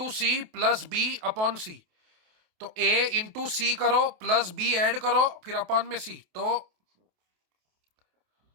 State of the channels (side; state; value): left; late; 28 ms